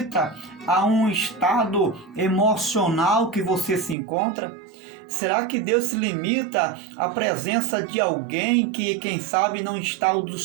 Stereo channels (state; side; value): drops out; left; at 4.0 s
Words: a um estado emocional que você se encontra? Será que Deus se limita à presença de alguém que, quem sabe, não está do